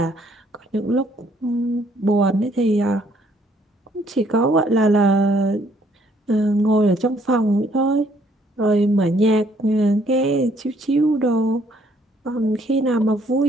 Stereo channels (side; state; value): both; normal; correlation 0.65